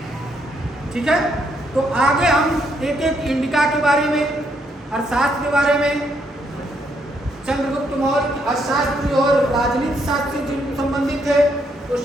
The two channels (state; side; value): normal; both; correlation 0.74